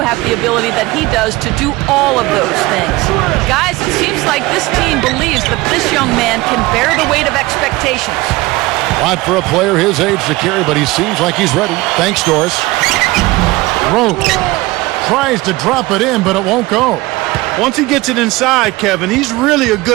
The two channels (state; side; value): quieter; left; 20.5 dB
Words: have the ability that he does to do all of those things. Guys, it seems like this team believes that this young man can bear the weight of expectations. A lot for a player his age to carry, but he seems like he's ready. Thanks, Doris. Rose tries to drop it in, but it won't go. Once he gets it inside, Kevin, he's really a